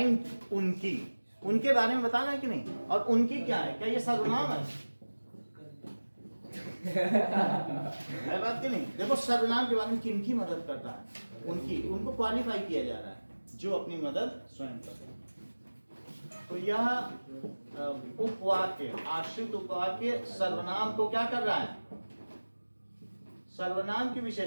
उनके बारे में बताना है कि नहीं? और उनकी क्या है? क्या ये सर्वनाम है? है बात कि नहीं? देखो सर्वनाम के बारे में किनकी मदद करता है? उनको क्वालिफाई किया जा रहा है जो अपनी मदद स्वयं करते हैं। तो यह उपवाक्य, आश्रित उपवाक्य सर्वनाम को क्या कर रहा है? सर्वनाम की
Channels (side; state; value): both; inverted; correlation -1.00